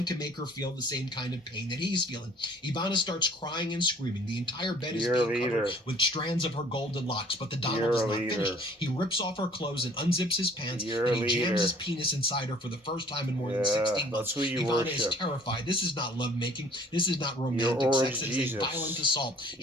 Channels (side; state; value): both; normal; correlation 0.54